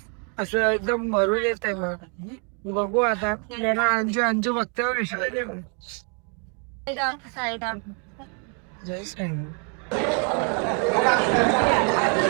असं एकदम भरून येत आहे. मग बघू आता. अंजू अंजू बघते जय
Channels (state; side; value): quieter; left; 38.5 dB